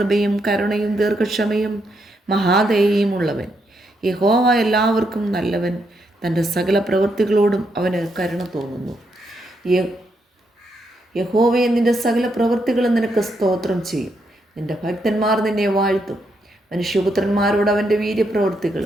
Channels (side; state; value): both; normal; correlation 0.79